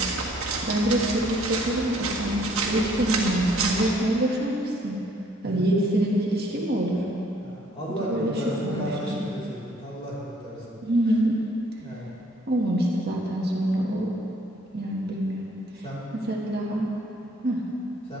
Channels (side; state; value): both; normal; correlation 0.62